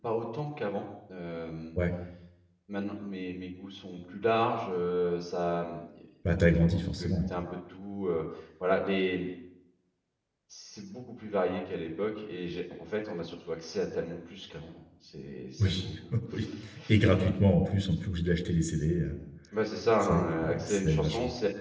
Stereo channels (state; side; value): identical; both; correlation 1.00